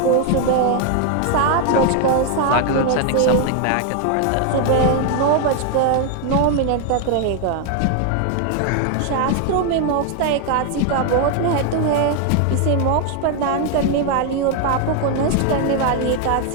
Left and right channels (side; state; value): both; different; correlation 0.00